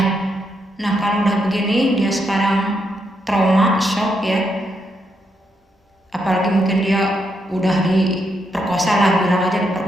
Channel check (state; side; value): normal; both; correlation 0.80